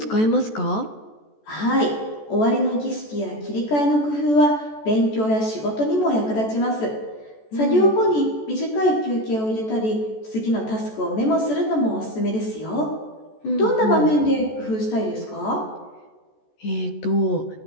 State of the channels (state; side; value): late; right; 14 ms